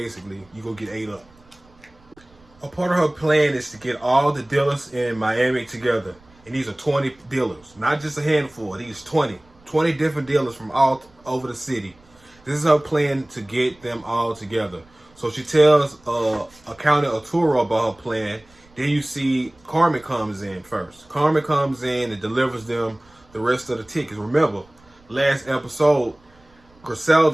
you're going to get ate up. A part of her plan is to get all the dealers in Miami together. And these are 20 dealers, not just a handful. These 20 different dealers from all over the city. This is her plan to get them all together. So she tells Accountant Arturo about her plan. Then you see Carmen comes in first. Carmen comes in and delivers them the rest of the tickets. Remember, last episode,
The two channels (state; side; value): noise; right; rumble, 29 dB below the sound